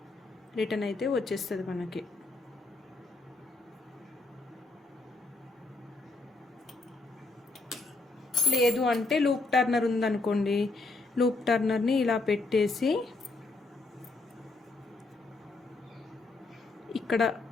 రిటర్న్ అయితే వచ్చేస్తుంది మనకి. లేదు అంటే లూప్ టర్నర్ ఉందనుకోండి, లూప్ టర్నర్ని ఇలా పెట్టేసి ఇక్కడ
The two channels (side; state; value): right; quieter; 3.4 dB